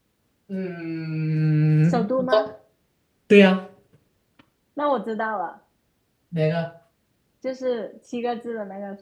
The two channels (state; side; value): identical; both; correlation 1.00